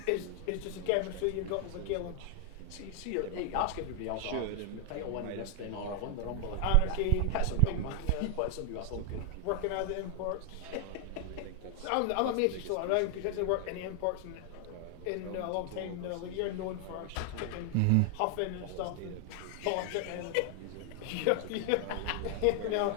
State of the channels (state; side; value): different; both; correlation 0.00